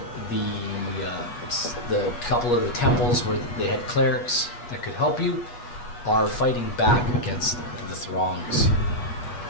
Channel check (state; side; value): late; right; 8.3 ms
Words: the couple of the temples where they had clerics that could help you are fighting back against the throngs.